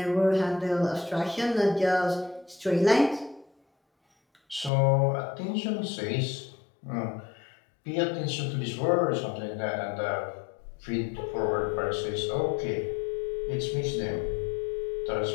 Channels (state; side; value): drops out; right; at 4.7 s